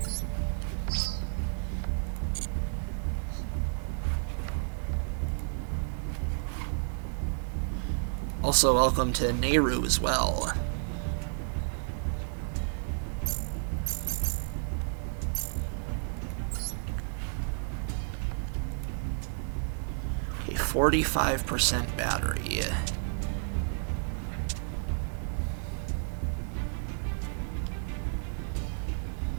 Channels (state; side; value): silent; left; 57 dB below the other